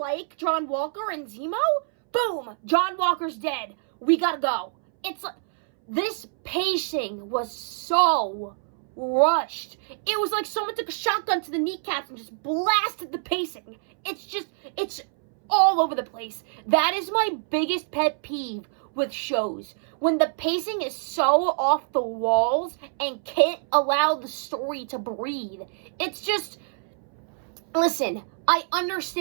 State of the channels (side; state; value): left; silent; 61 dB below the other